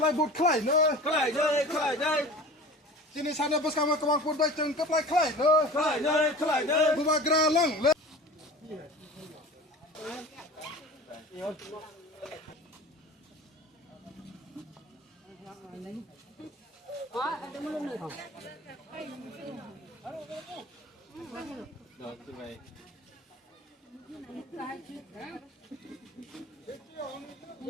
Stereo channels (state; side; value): normal; both; correlation 0.38